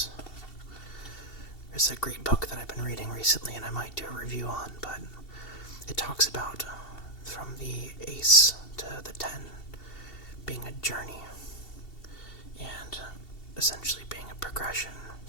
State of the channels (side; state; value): right; late; 2.7 ms